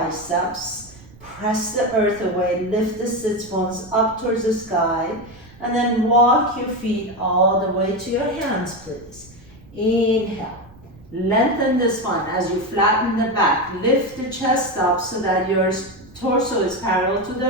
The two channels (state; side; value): noise; right; rumble, 23 dB below the sound